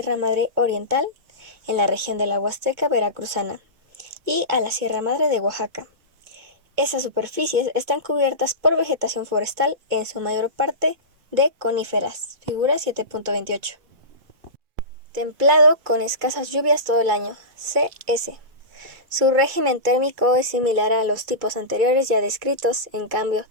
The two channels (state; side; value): late; left; 2.2 ms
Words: Madre Oriental, en la región de la Huasteca Veracruzana, y a la Sierra Madre de Oaxaca. Esas superficies están cubiertas por vegetación forestal, en su mayor parte de coníferas, figura 7.28. Templado con escasas lluvias todo el año, CS. Su régimen térmico es similar a los tipos anteriores ya descritos, en cambio,